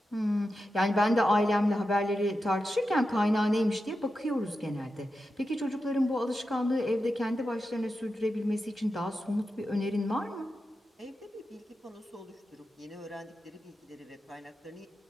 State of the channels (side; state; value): both; normal; correlation 0.90